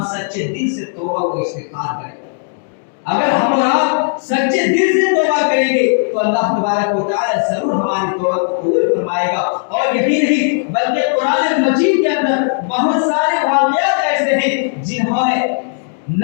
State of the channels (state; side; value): silent; right; digital silence